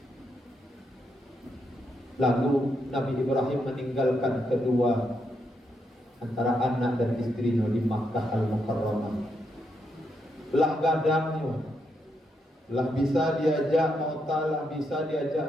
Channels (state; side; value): normal; both; correlation 0.80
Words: Lalu Nabi Ibrahim meninggalkan kedua antara anak dan istrinya di Makkah Al-Mukarramah. Lah gadangnya, lah bisa diajak mauta, lah bisa